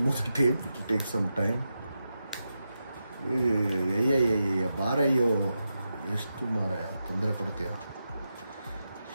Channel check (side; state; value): both; inverted; correlation -0.89